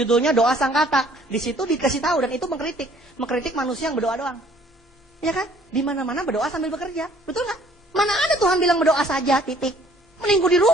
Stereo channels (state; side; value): normal; both; correlation 0.58